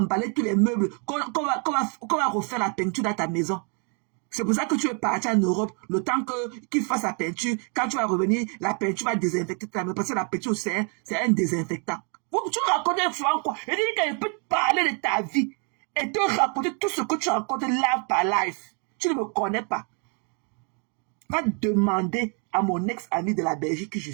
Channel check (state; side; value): quieter; left; 38.2 dB